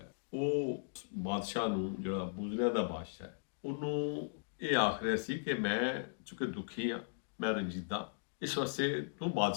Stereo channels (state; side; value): silent; right; digital silence